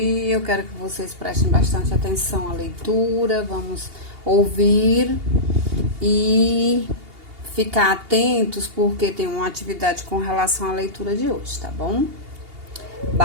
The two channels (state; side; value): late; left; 2.8 ms